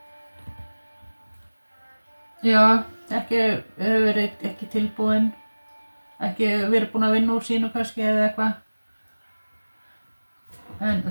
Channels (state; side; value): inverted; both; correlation -1.00